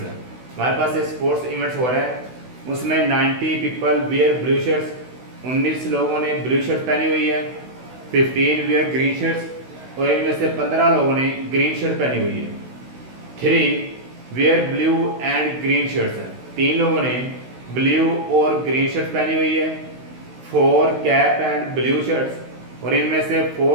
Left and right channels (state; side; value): late; left; 16 ms